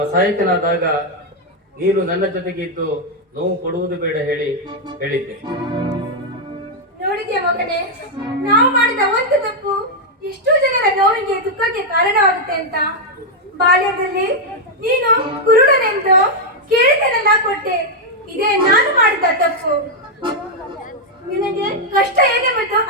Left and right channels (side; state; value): both; normal; correlation -0.01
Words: ಅಸಹಾಯಕನಾದಾಗ ನೀನು ನನ್ನ ಜೊತೆಗೆ ಇದ್ದು ನೋವು ಕೊಡುವುದು ಬೇಡ ಹೇಳಿದ್ದೆ. ನೋಡಿದ್ಯಾ ಮಗನೇ, ನಾವು ಮಾಡಿದ ಒಂದು ತಪ್ಪು ಎಷ್ಟೋ ಜನರ ನೋವಿಗೆ ದುಃಖಕ್ಕೆ ಕಾರಣವಾಗುತ್ತೆ ಅಂತ. ಬಾಲ್ಯದಲ್ಲಿ ನೀನು ಕುರುಡನೆಂದು ಕೇಳಿದನೆಲ್ಲ ಕೊಟ್ಟೆ. ಇದೇ ನಾನು ಮಾಡಿದ ತಪ್ಪು. ನಿನಗೆ ಕಷ್ಟ ಏನೆಂಬುದು